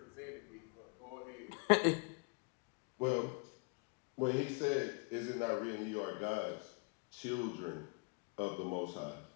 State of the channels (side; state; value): right; quieter; 33.8 dB